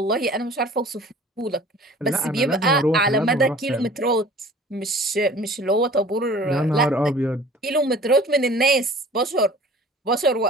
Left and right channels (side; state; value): both; normal; correlation 0.46